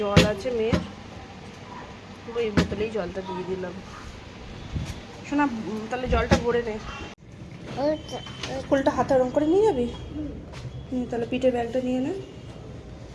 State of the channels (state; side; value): identical; both; correlation 1.00